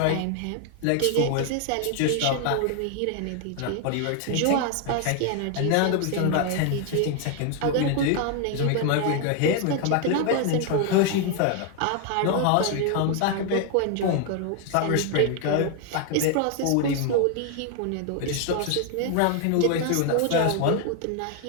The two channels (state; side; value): different; both; correlation 0.00